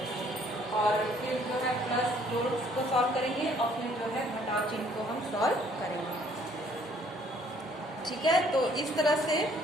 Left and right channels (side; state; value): both; normal; correlation 0.61